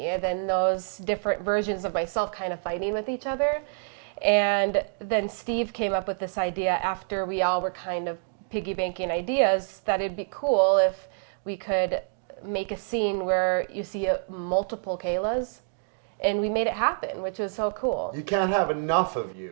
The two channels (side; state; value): left; silent; digital silence